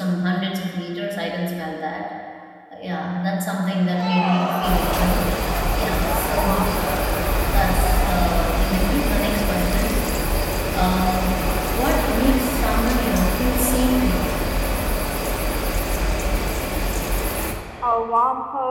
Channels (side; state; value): both; identical; correlation 1.00